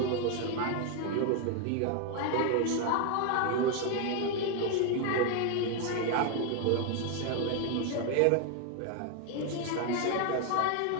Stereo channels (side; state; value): both; different; correlation 0.01